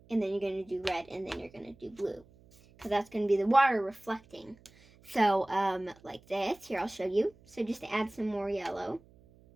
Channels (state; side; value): noise; right; hum, 27 dB below the sound